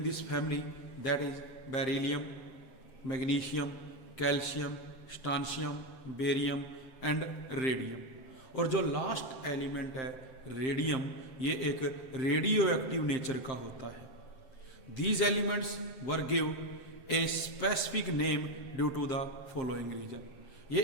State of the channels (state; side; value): late; right; 7.7 ms